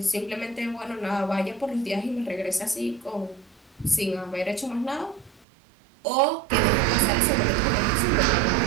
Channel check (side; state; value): left; drops out; at 5.5 s